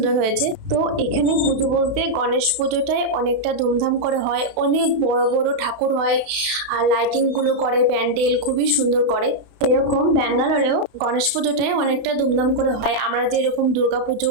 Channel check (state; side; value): late; left; 32 ms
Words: হয়েছে। তো এখানে পুজো বলতে গণেশ পুজোটাই অনেকটা ধুমধাম করে হয়, অনেক বড় বড় ঠাকুর হয়, আর লাইটিং গুলো করে, প্যান্ডেল খুবই সুন্দর করে। এরকম ব্যাঙ্গালোরেও গণেশ পুজোটাই অনেকটা ধুমধাম করে হয়, আমরা যেরকম দুর্গা